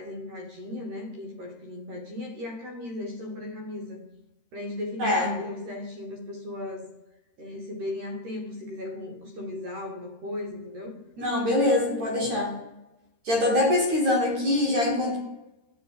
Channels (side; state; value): left; late; 13 ms